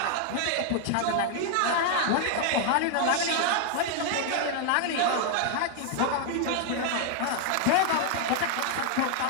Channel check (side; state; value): both; different; correlation 0.00